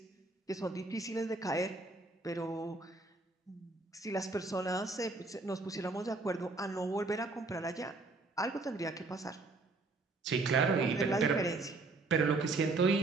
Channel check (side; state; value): left; quieter; 3.4 dB